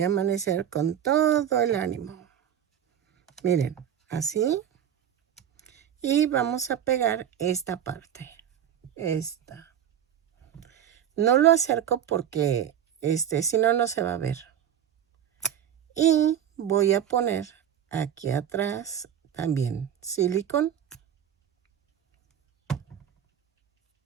a amanecer con todo el ánimo. Miren, así. Y vamos a pegar esta parte. Esta. No lo acerco porque si no, no se va a ver. Y voy a poner aquí atrás también silicón.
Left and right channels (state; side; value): quieter; left; 9.6 dB